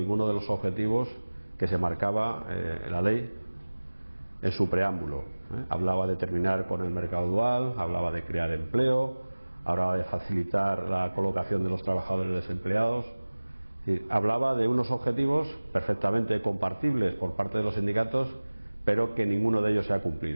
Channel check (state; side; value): inverted; both; correlation -1.00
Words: de los objetivos que se marcaba la ley en su preámbulo. Hablaba de terminar con el mercado dual, hablaba de crear empleo, hablaba de facilitar la colocación de los trabajadores desempleados. Es decir, hablaba de unos objetivos perfectamente compartibles por parte de los sindicatos, pero que ninguno de ellos se ha